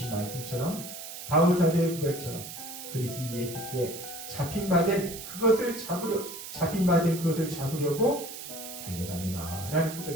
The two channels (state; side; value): noise; right; hiss, 10 dB below the sound